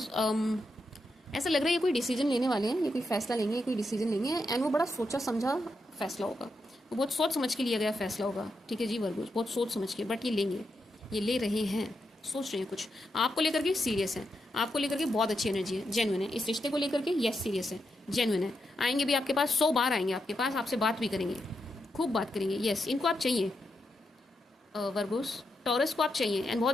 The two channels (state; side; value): normal; both; correlation 0.84